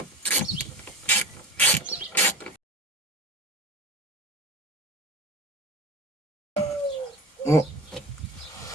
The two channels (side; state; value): both; normal; correlation 0.30